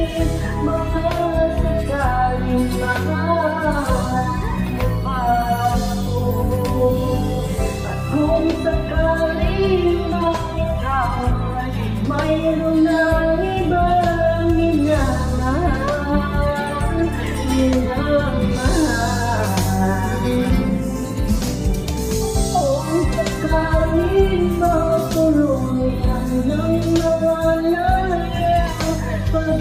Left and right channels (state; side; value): identical; both; correlation 1.00